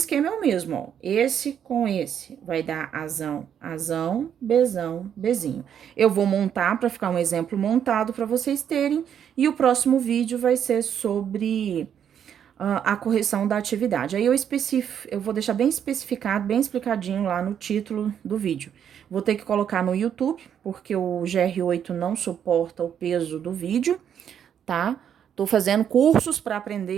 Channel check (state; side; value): quieter; left; 8.8 dB